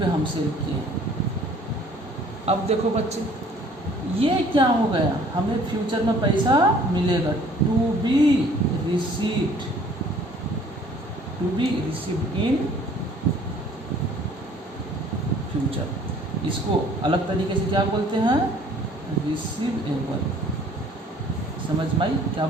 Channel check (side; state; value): both; normal; correlation 0.55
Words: हम सेल किए। अब देखो बच्चे, ये क्या हो गया? हमें फ्यूचर में पैसा मिलेगा, to be received in future. इसको अलग तरीके से क्या बोलते हैं? रिसीवेबल। समझ में आई? क्या